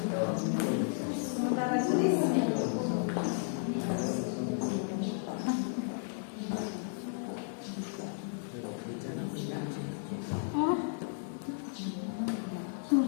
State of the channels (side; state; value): right; silent; 55 dB below the other